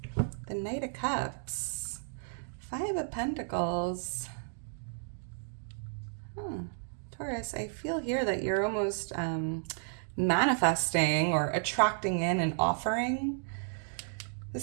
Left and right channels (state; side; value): silent; left; digital silence